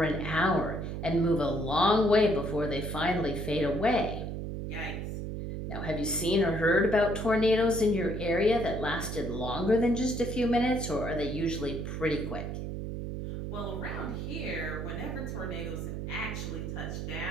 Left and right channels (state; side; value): noise; right; hum, 5 dB below the sound